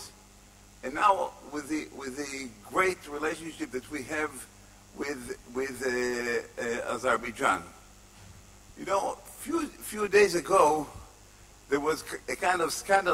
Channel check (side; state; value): both; identical; correlation 1.00